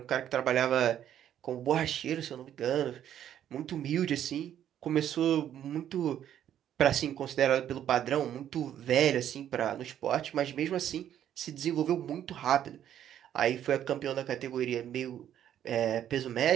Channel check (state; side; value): quieter; left; 10.5 dB